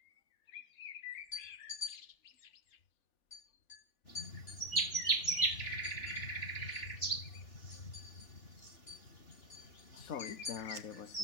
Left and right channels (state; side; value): late; right; 3.4 ms